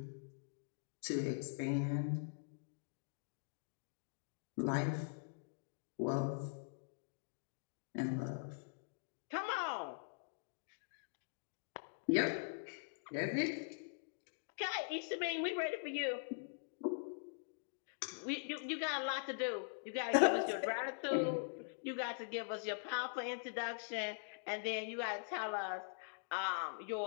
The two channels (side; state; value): right; silent; digital silence